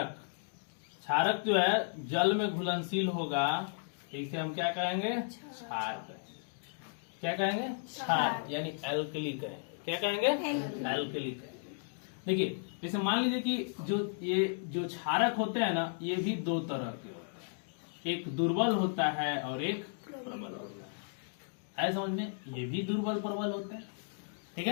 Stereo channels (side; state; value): right; silent; digital silence